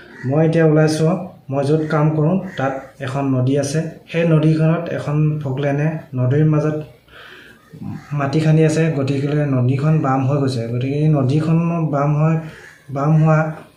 মই এতিয়া ওলাইছোঁ, মই য'ত কাম কৰোঁ তাত এখন নদী আছে। সেই নদীখনত এখন ফকলেনে নদীৰ মাজত মাটি খান্দি আছে, গতিকে নদীখন বাম হৈ গৈছে। গতিকে এই নদীখন বাম হোৱা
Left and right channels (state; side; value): identical; both; correlation 1.00